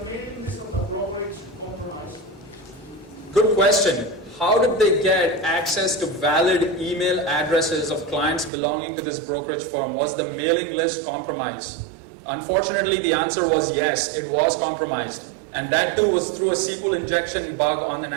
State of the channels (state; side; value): drops out; left; at 8.5 s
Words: mailing list of the brokerage compromised? Good question. How did they get access to valid email addresses of clients belonging to this brokerage firm? Was the mailing list compromised? Unfortunately, the answer was yes, it was compromised. And that too was through a SQL injection bug on an